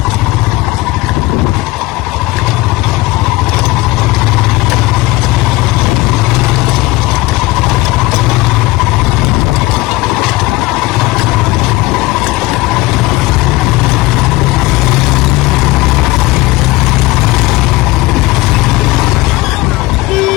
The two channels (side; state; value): right; quieter; 20.4 dB